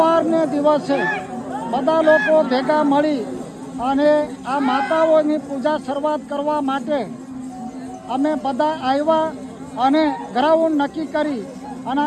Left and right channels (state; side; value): identical; both; correlation 1.00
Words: દિવસે બધા લોકો ભેગા મળી અને આ માતાઓની પૂજા શરૂઆત કરવા માટે અમે બધા આવ્યા અને ગ્રાઉન્ડ નક્કી કરી અને